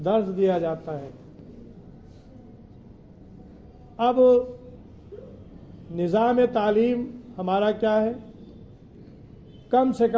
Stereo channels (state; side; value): identical; both; correlation 1.00